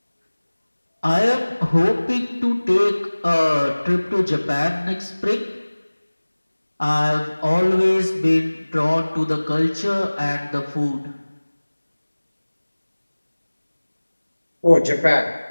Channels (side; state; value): both; inverted; correlation -1.00